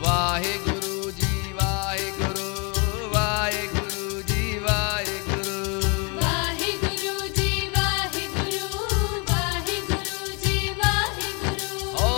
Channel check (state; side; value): quieter; right; 32.8 dB